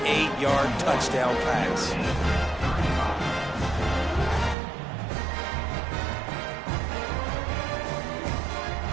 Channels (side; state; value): left; drops out; at 4.5 s